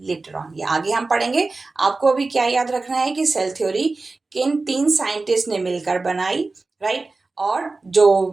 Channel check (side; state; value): left; quieter; 3.6 dB